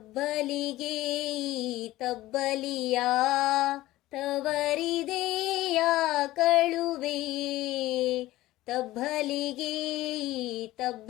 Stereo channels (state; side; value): quieter; right; 16.7 dB